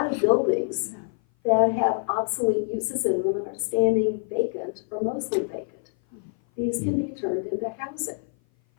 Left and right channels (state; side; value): silent; right; 56 dB below the other